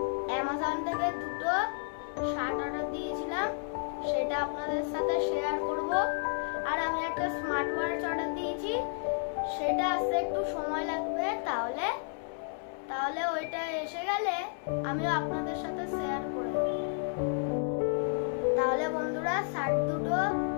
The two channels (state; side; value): silent; right; 57 dB below the other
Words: অ্যামাজন থেকে দুটো শার্ট অর্ডার দিয়েছিলাম, সেটা আপনাদের সাথে শেয়ার করব। আর আমি একটা স্মার্ট ওয়াচ অর্ডার দিয়েছি, সেটা আসতে একটু সময় লাগবে, তাহলে ওইটা এসে গেলে আমিও আপনাদের সাথে শেয়ার করে দেব। তাহলে বন্ধুরা, শার্ট দুটো